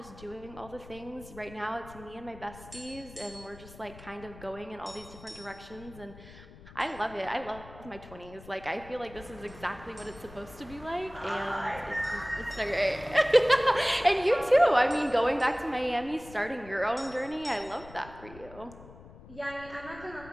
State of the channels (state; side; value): noise; left; rumble, 18 dB below the sound